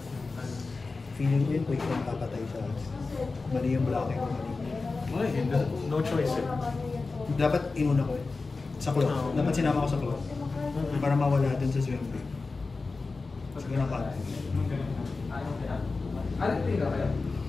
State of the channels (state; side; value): quieter; right; 3.9 dB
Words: Feeling ko yun, quick lang papatay siya. Mali yung blocking ko. Ay, no choice eh. Dapat inuna ko eh. Sa club. Dapat sinama ko sa club. Para mawala dun sa swing break. Siguro na pa.